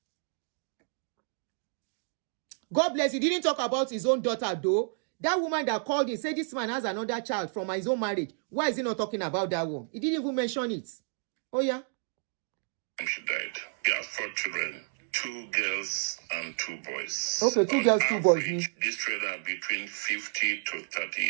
God bless you. He didn't talk about his own daughter though. That woman that called him said this man has another child from his own marriage. Why is he not talking about that one? He didn't even mention it. Oh yeah? She died. He has 4 children. 2 girls and 2 boys. Okay, 2 girls, 2 boys. These children are between 50 to 30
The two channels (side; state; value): left; silent; 57 dB below the other